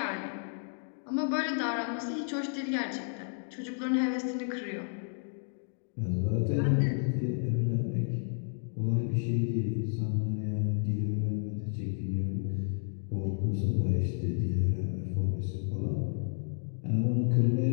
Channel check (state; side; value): silent; right; 57 dB below the other